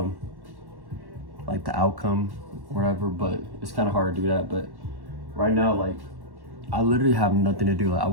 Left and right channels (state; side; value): late; left; 1.1 ms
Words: like the outcome or whatever, but it's kind of hard to do that. But right now, like, I literally have nothing to do. Like, I